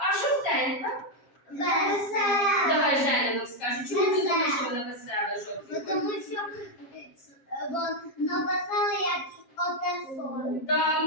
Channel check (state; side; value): late; right; 7.4 ms